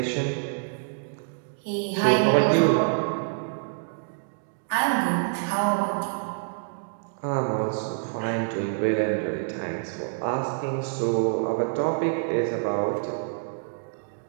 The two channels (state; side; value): silent; left; digital silence